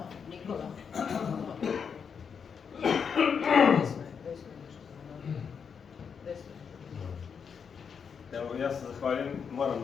Nikola. Evo, ja se zahvaljujem,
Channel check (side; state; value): right; quieter; 6.6 dB